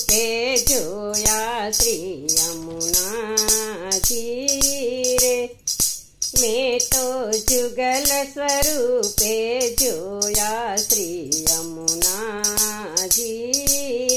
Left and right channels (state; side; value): identical; both; correlation 1.00